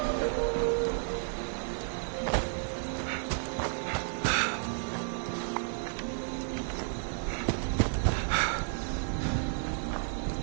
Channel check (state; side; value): silent; left; 56 dB below the other